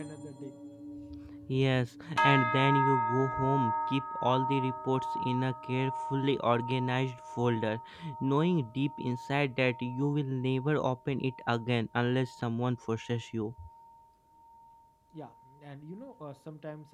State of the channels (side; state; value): both; identical; correlation 1.00